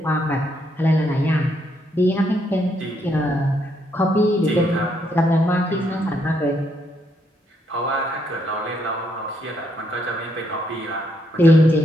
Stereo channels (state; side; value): normal; both; correlation 0.75